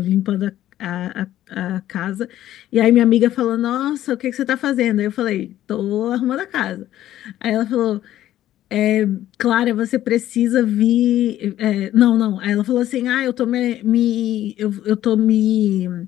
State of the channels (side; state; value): right; quieter; 13.0 dB